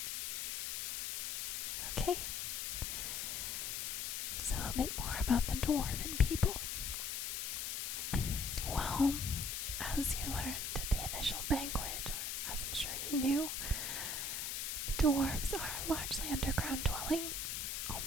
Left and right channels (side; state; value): left; noise; hiss, 2 dB below the sound